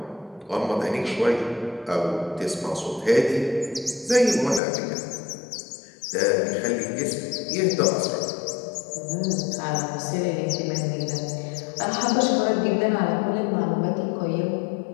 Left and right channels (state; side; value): drops out; right; at 4.6 s